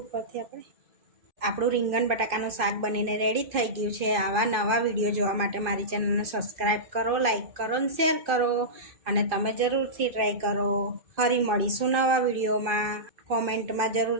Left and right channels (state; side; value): late; left; 2.5 ms